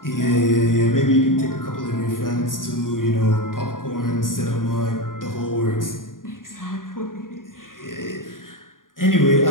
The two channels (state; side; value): late; right; 0.90 ms